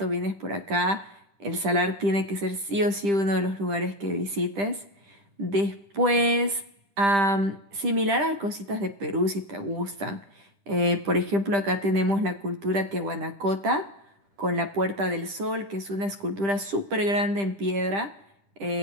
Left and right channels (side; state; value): left; late; 10 ms